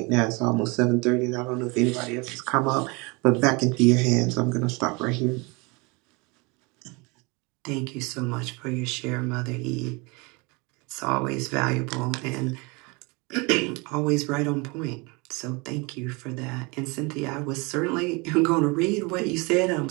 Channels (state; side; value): quieter; left; 27.9 dB